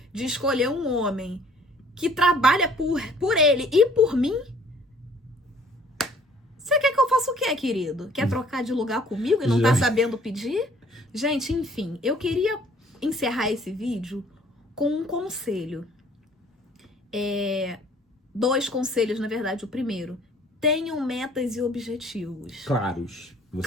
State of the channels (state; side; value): normal; both; correlation 0.57